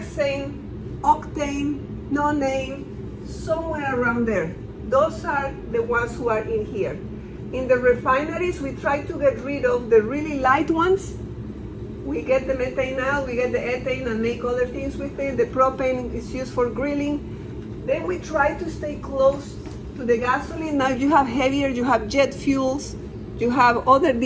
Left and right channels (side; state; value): both; identical; correlation 1.00